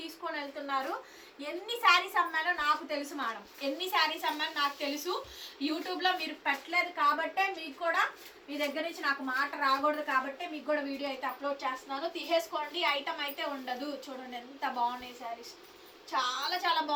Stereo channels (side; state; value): both; identical; correlation 1.00